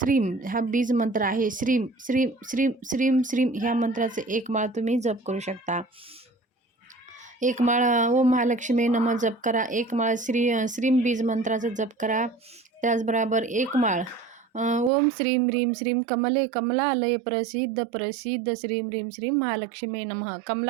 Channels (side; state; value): left; drops out; at 14.9 s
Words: हा बीज मंत्र आहे. श्रीम श्रीम श्रीम श्रीम श्रीम ह्या मंत्राचे 1 माळ तुम्ही जप करू शकता. 1 माळ ओम महालक्ष्मी नमः जप करा. 1 माळ श्रीम बीज मंत्राचा जप करा. त्याचबरोबर 1 माळ ओम श्रीम ह्रीम श्रीम कमले कमलालय प्रसिद्ध प्रसिद्ध श्रीम ह्रीम श्रीम महालक्ष्मी नमः